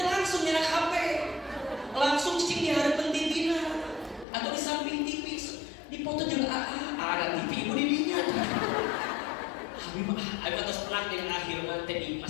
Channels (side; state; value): right; drops out; at 4.2 s